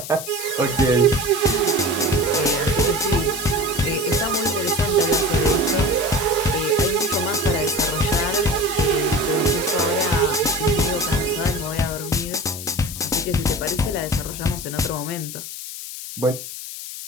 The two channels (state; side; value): noise; left; hiss, 9 dB below the sound